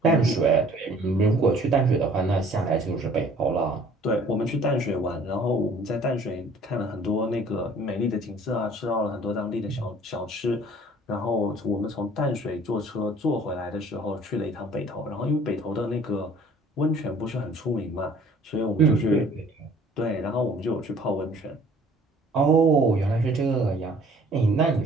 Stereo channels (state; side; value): normal; both; correlation 0.54